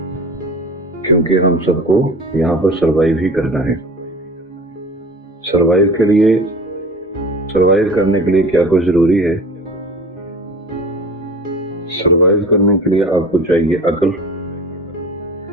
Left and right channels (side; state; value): both; normal; correlation 0.39